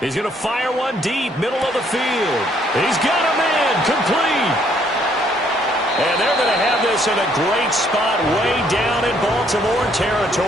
He's going to fire one deep, middle of the field. He's got him in, complete. And they're going to have this in a great spot way down in Baltimore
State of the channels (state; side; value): normal; both; correlation 0.67